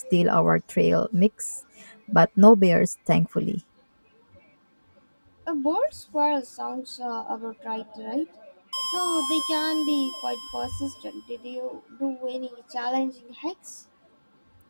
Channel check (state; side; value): inverted; both; correlation -1.00